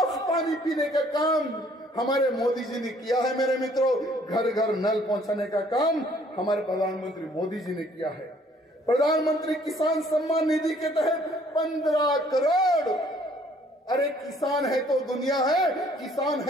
पानी पीने का काम हमारे मोदी जी ने किया है मेरे मित्रों। घर घर नल पहुंचाने का काम हमारे प्रधानमंत्री मोदी जी ने किया है। प्रधानमंत्री किसान सम्मान निधि के तहत 15 करोड़। अरे किसान है तो दुनिया है, किसान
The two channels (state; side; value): normal; both; correlation 0.60